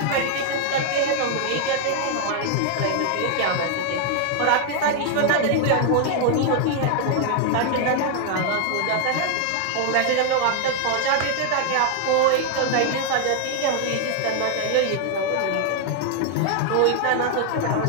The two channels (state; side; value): different; both; correlation 0.00